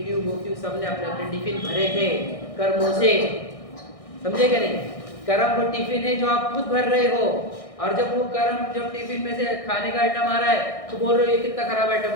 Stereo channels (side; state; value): right; late; 1.6 ms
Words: क्यों, वो क्यों। सबने अपने अपने टिफिन भरे थे कर्मों से, समझे क्या नहीं? कर्म वो टिफिन है जो आप खुद भर रहे हो। और जब वो कर्म जब टिफिन में से खाने का आइटम आ रहा है तो बोल रहे हो ये कितना खराब आइटम